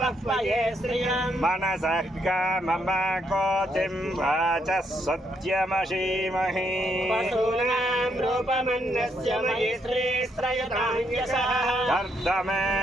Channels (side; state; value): both; normal; correlation 0.76